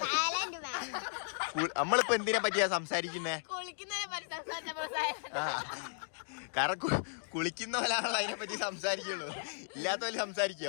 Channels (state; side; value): silent; right; digital silence